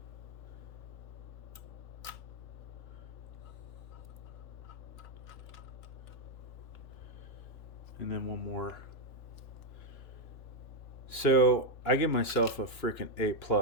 And then one more. So I give myself a freaking A+,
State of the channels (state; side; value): late; right; 2.9 ms